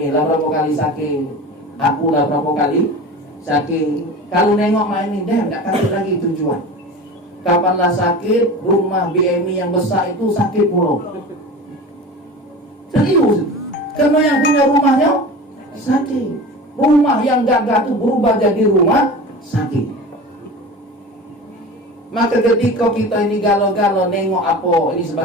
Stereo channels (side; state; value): both; normal; correlation 0.33